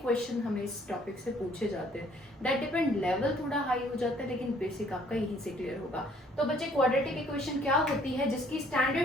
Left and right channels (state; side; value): normal; both; correlation 0.61